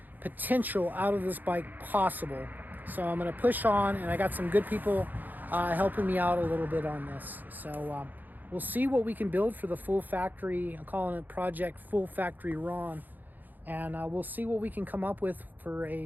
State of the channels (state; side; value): late; left; 0.086 ms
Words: potential out of this bike possible. So I'm going to push on, and I got some good people helping me out a little bit on this. So we'll see what we can build for the full factory. I'm calling it Project Full Factory Ron, and we'll see what we can come up with for